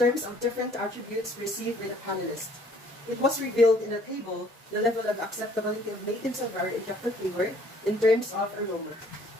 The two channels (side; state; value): both; normal; correlation 0.60